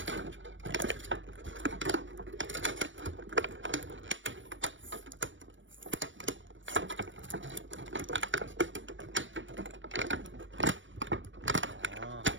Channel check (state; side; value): late; left; 0.56 ms